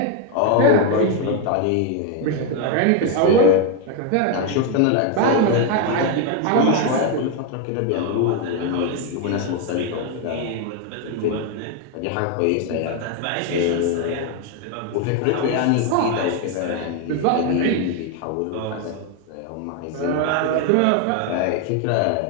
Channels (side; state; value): both; different; correlation 0.01